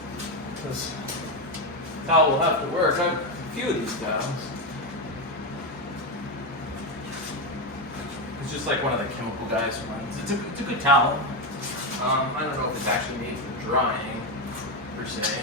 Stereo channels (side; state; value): both; normal; correlation 0.10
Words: This towel will have to work. I have a few of these towels. It's just like one of the chemical guys runs. It's a good towel. I don't know if it's actually made for drying per se.